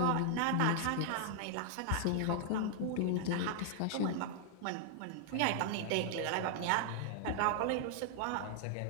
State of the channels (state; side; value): different; both; correlation -0.01